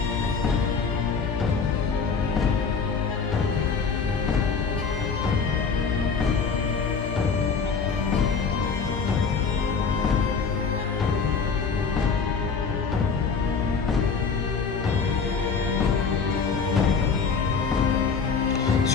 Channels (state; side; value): quieter; right; 5.5 dB